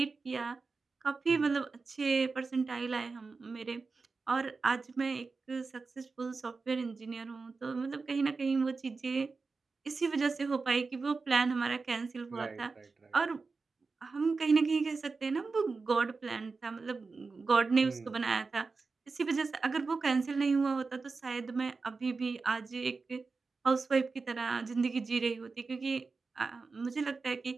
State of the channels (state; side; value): quieter; left; 4.3 dB